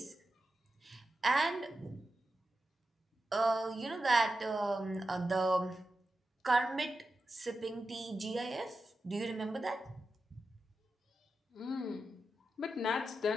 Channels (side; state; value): both; normal; correlation 0.90